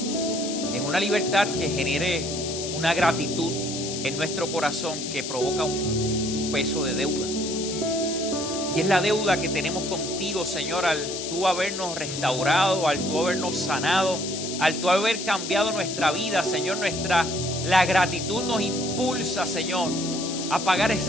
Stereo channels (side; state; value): left; noise; hiss, 6 dB below the sound